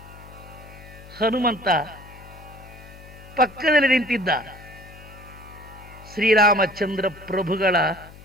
ಹನುಮಂತ ಪಕ್ಕದಲ್ಲಿ ನಿಂತಿದ್ದ ಶ್ರೀರಾಮಚಂದ್ರ ಪ್ರಭುಗಳ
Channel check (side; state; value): left; noise; hum, 18 dB below the sound